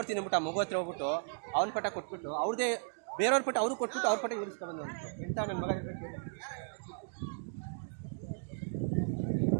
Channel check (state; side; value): silent; left; digital silence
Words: ಅಂದ್ಬಿಟ್ಟು ಆ ಮಗು ಹತ್ರ ಹೋಗ್ಬಿಟ್ಟು ಅವ್ನ ಪಟ ಕೊಟ್ಬಿಟ್ಟು ಅವ್ರದೇ ಬೇರೆಯವ್ರ ಪಟ ಅವ್ರು ಕೊಟ್ಬಿಟ್ಟು ಅವ್ರ ಪಟ ಇಳಿಸ್ಕೊಬಂದು ಎಂಥ ನನ್ನ ಮಗ.